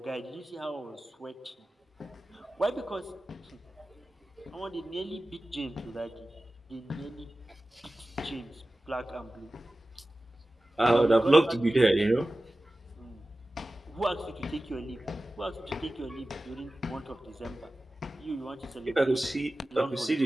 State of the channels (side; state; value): both; normal; correlation 0.96